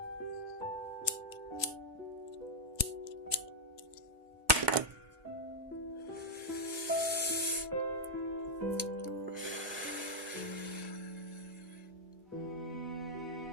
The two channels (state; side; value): normal; both; correlation -0.02